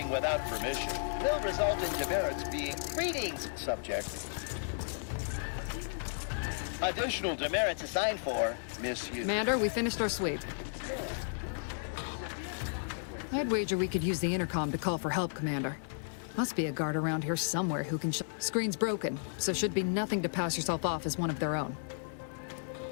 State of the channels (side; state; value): right; silent; digital silence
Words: without permission will result in demerits being... Greetings, subject. Additional demerits assigned for misuse. Commander, we finished our sweep. I'd wager we could use the intercom to call for help, Commander. Must be a guard around here somewhere who can Screen's broken, so should be nothing to pass yourself off as one of their own.